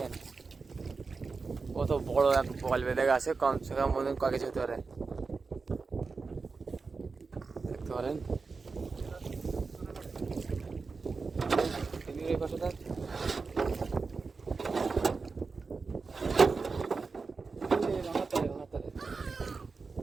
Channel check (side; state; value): left; quieter; 4.5 dB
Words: কত বড় এক বল বেঁধে গেছে, কমসে কম বন্ধুগণ কয় কেজি হতে পারে দেখতে পারেন। এই পাশে দেখ,